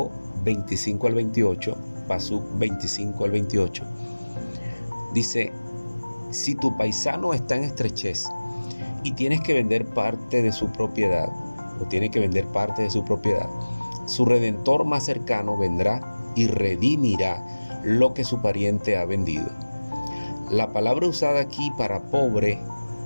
al 28, Pasuk 25 al 28, dice: si tu paisano está en estrechez y tienes que vender parte de su propiedad, su redentor más cercano vendrá y redimirá lo que su pariente ha vendido. La palabra usada aquí para pobre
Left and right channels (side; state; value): both; inverted; correlation -1.00